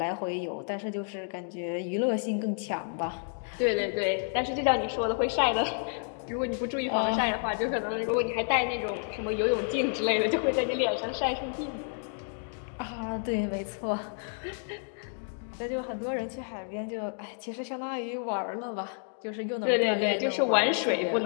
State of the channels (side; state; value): right; silent; 58 dB below the other